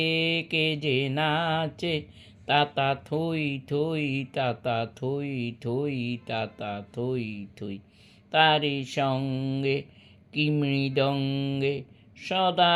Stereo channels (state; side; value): identical; both; correlation 1.00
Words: কে যে নাচে, তাতা থই থই তাতা থই থই তাতা থই থই। তারি সঙ্গে কি মৃদঙ্গে সদা